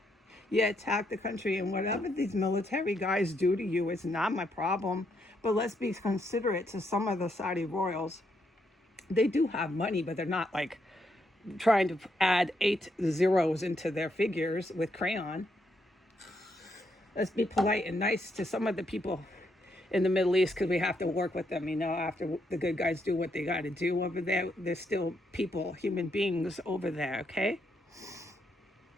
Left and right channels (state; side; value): normal; both; correlation 0.77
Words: You attack the country, and whatever these military guys do to you is not my problem. But let's be considerate to some of the Saudi royals. They do have money, but they're not like trying to add 8 zeros into their figures with crayon. Let's be polite and nice to some of the people in the Middle East, because we have to work with them, you know, after the good guys do what they got to do over there. There's still people, human beings over there, okay?